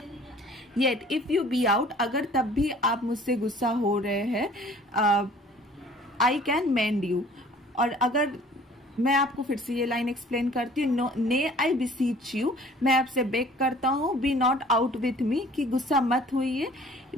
Yet if you be out, अगर तब भी आप मुझसे गुस्सा हो रहे हैं, आई कैन मेंड यू। और अगर मैं आपको फिर से ये लाइन एक्सप्लेन करती हूँ, ने आई बिसीच यू, मैं आपसे बेग करता हूँ, be not out with me, कि गुस्सा मत होइए।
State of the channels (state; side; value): normal; both; correlation 0.51